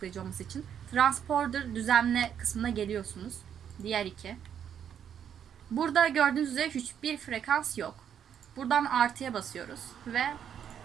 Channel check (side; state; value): left; quieter; 8.8 dB